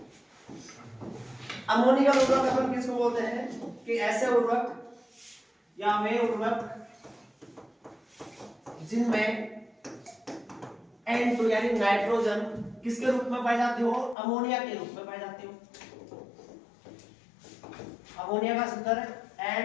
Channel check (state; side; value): drops out; right; at 14.2 s